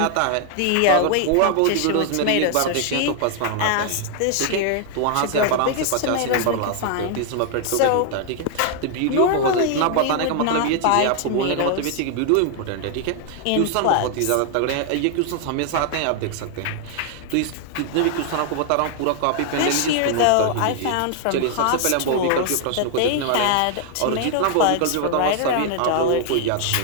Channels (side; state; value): both; different; correlation 0.00